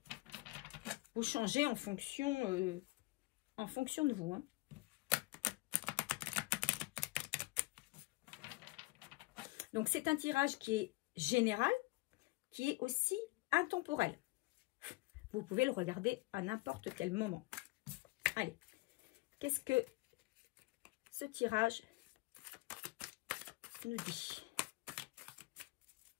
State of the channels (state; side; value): quieter; right; 22.3 dB